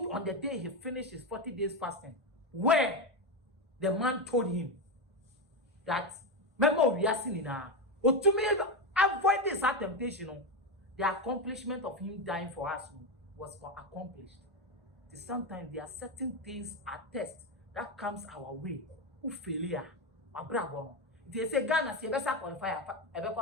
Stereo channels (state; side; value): normal; both; correlation 0.12